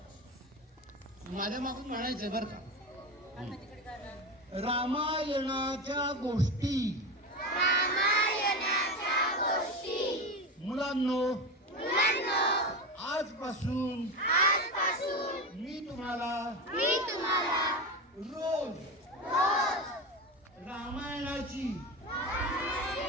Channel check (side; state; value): both; normal; correlation 0.21